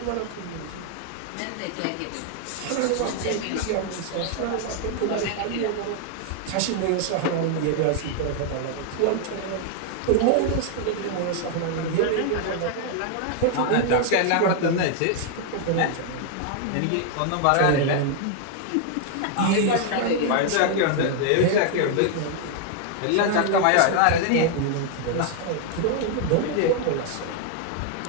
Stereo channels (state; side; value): different; both; correlation 0.00